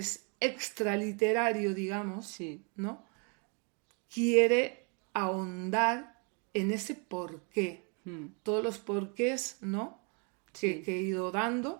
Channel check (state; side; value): quieter; left; 35.6 dB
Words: extraliterario, digamos, ¿no? Quiere ahondar en ese porqué. Todos los porqués, ¿no? Que he ido dando,